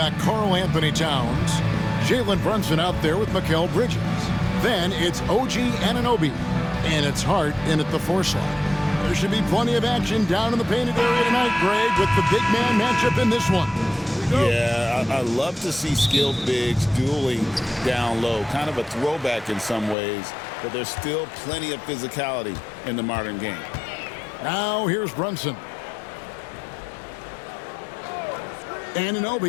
Karl Anthony Towns, Jalen Brunson out there with Mikal Bridges. Then it's OG Anunoby, and it's Hart in at the 4 slot. There should be plenty of action down in the painted area tonight, Greg, with the big man matchup in this one. Yeah, I love to see skilled bigs dueling down low. Kind of a throwback in some ways, but there's still plenty of physicality in the modern game. Now here's Brunson.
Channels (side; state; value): right; drops out; at 20.0 s